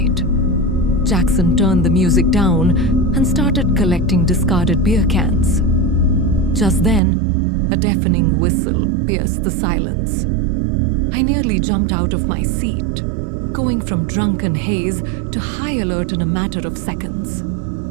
Jackson turned the music down and started collecting discarded beer cans. Just then, a deafening whistle pierced the silence. I nearly jumped out of my seat, going from drunken haze to high alert in a matter of seconds.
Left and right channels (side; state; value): left; drops out; at 7.0 s